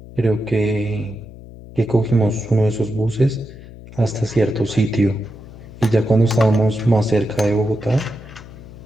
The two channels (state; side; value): noise; left; hum, 17 dB below the sound